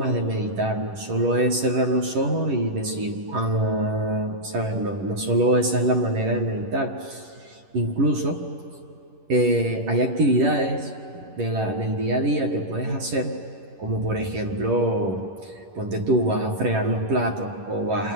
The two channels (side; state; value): left; late; 11 ms